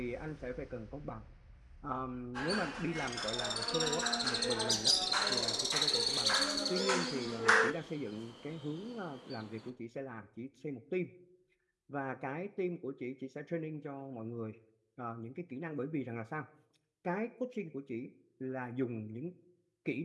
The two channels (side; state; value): both; identical; correlation 1.00